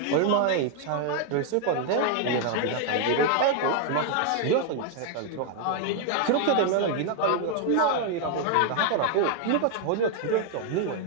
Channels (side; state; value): both; different; correlation 0.00